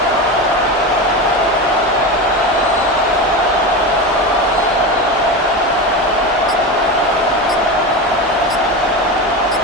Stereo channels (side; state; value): both; normal; correlation 0.22